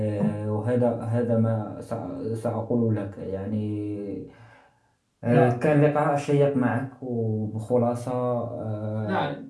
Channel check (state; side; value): identical; both; correlation 1.00